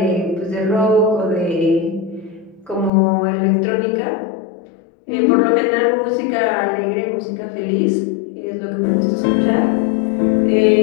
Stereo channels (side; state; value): right; drops out; at 2.9 s